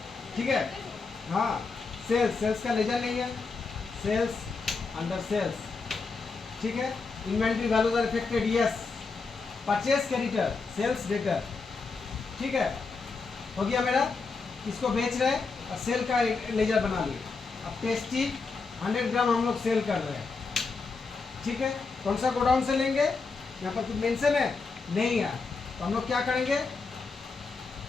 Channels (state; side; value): quieter; right; 4.4 dB